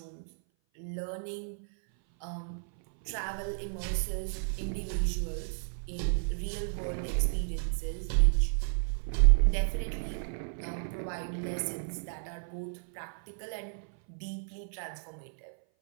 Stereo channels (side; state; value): left; silent; 56 dB below the other